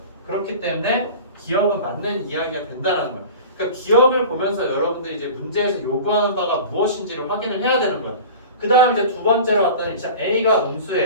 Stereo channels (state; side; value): inverted; both; correlation -0.37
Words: 그렇기 때문에 기억은 맞는 이야기가 된다는 거예요. 그러니까 기억을 보면서 여러분들이 이제 문제에서 요구하는 바가 무엇인지를 확인을 해야 되는 거예요. 그 다음 이제 두 번째로 왔더니 자, A가